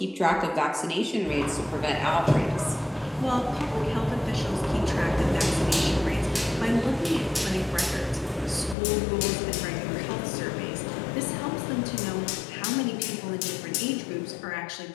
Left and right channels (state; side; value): drops out; right; at 8.8 s